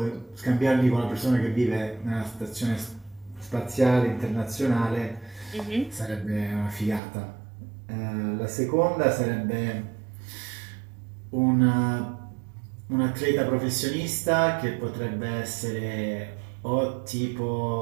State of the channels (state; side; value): drops out; left; at 7.0 s